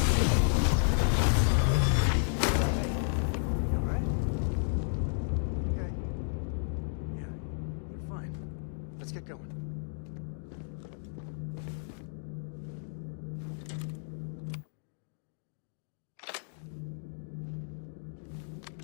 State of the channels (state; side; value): silent; right; digital silence